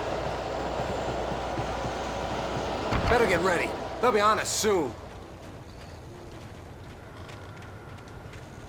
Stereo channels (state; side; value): identical; both; correlation 1.00